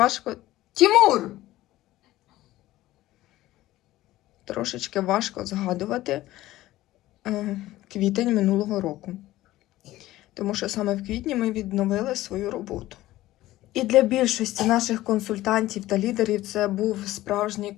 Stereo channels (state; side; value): quieter; right; 16.0 dB